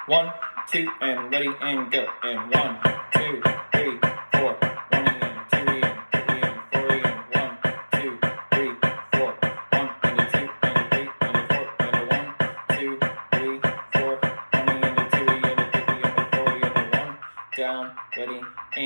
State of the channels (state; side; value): inverted; both; correlation -1.00